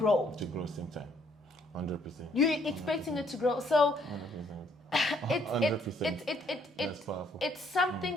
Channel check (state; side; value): normal; both; correlation 0.66